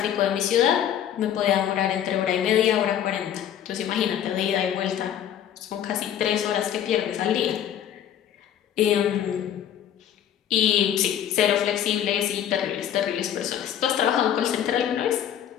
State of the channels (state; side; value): quieter; right; 10.1 dB